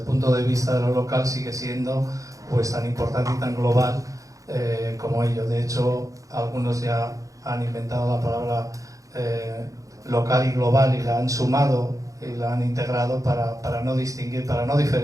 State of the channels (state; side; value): late; left; 0.16 ms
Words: punto de vista de lo local sigue siendo pues tan importante y tan global como ello. De hecho, algunos ya han inventado la palabra local y global y la han sumado y la han integrado para no distinguir, para no